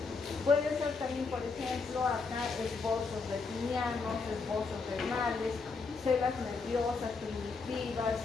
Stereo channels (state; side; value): quieter; right; 4.5 dB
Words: Puede ser también, por ejemplo, acá esbozos retinianos, esbozos renales, células nerviosas, primitivas,